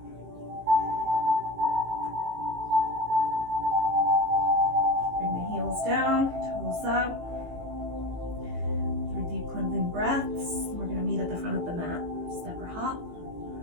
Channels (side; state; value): left; late; 18 ms